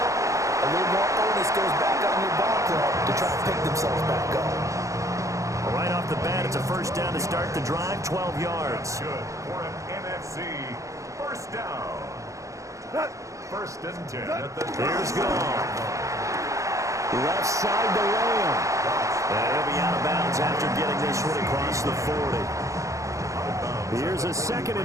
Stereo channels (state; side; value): late; left; 0.15 ms